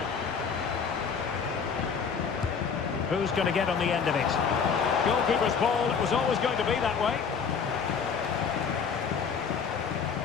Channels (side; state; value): right; quieter; 6.2 dB